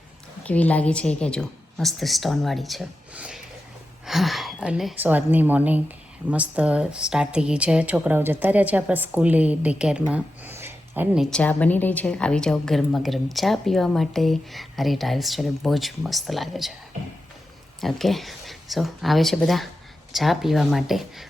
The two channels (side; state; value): both; normal; correlation 0.90